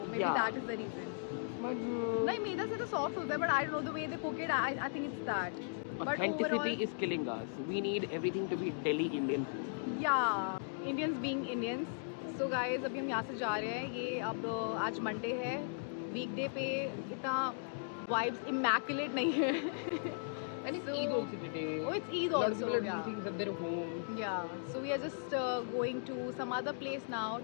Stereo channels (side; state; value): right; silent; digital silence